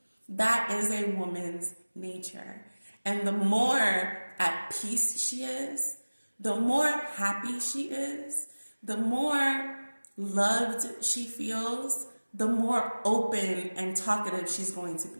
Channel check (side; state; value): both; inverted; correlation -1.00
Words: That is a woman's nature. And the more at peace she is, the more happy she is, the more loved she feels, the more open and talkative she's going to